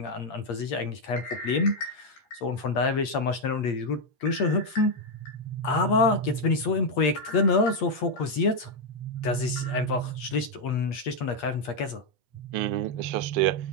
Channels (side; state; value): right; late; 8.5 ms